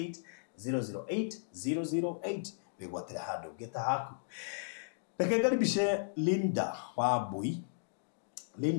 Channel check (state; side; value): silent; right; digital silence